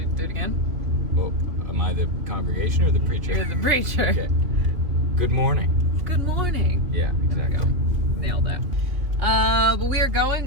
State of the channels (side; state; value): left; late; 2.8 ms